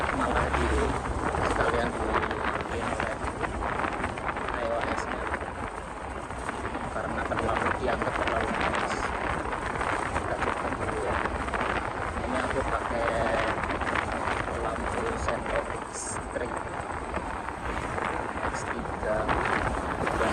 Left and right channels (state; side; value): identical; both; correlation 1.00